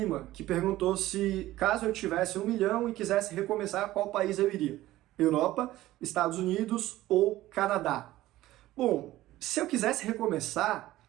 que perguntou se, caso eu tivesse 1 milhão e quisesse recomeçar, qual país eu iria? Europa, Estados Unidos ou Canadá? Bom, se eu quisesse recomeçar,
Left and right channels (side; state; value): left; quieter; 15.9 dB